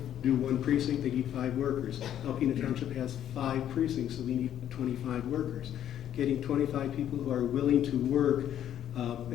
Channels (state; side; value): quieter; right; 10.7 dB